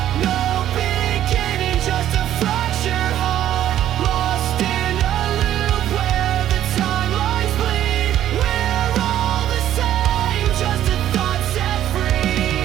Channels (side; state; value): left; quieter; 11.8 dB